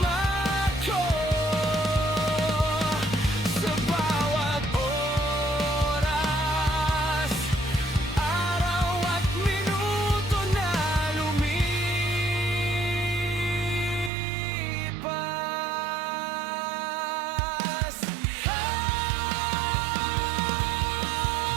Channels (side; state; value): left; drops out; at 14.1 s